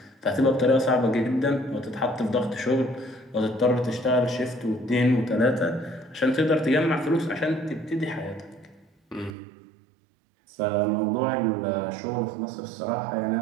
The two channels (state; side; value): drops out; left; at 9.3 s